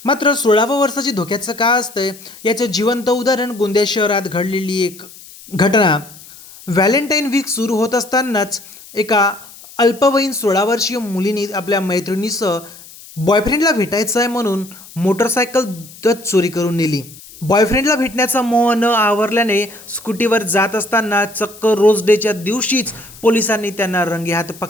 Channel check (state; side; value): noise; left; hiss, 19 dB below the sound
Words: मात्र 16व्या वर्षाची धोक्याचं का असतंय याचं जिवंत उदाहरण गोंदिया शहरात घडलेली एक घटना. व्हॅलेंटाईन वीक सुरू होत असतानाच एका अल्पवयीन 16 वर्षीय मुलीने आपल्या मैत्रिणीसह बॉयफ्रेंडला भेटायचं आहे म्हणून मोटरसायकल दत चोरी करून नेली. बॉयफ्रेंडला भेटण्याचा मोह न आवरल्याने स्कूटीवर जात असताना चक्क रोज डेच्या दिवशीच पोलिसांनी त्यांना रंगेहात